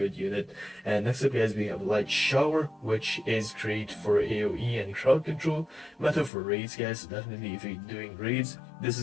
unit. And next up guys, we have Light Shower, which is great for AoE and crowd control, meta for raids guys. Definitely if you're doing raids, this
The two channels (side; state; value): right; drops out; at 6.3 s